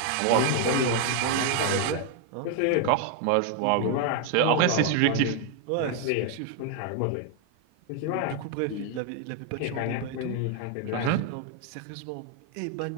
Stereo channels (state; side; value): different; both; correlation 0.00